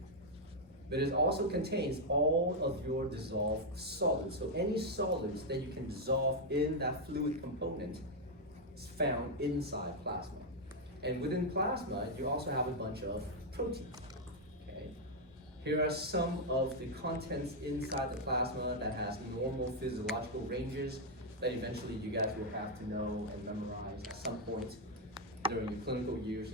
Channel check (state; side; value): normal; both; correlation 0.00